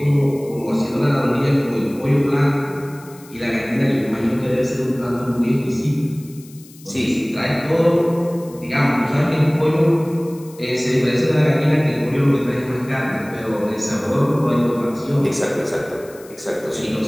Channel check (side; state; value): left; noise; hiss, 23 dB below the sound